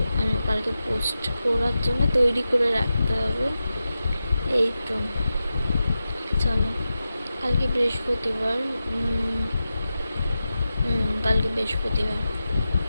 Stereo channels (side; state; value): both; inverted; correlation -0.92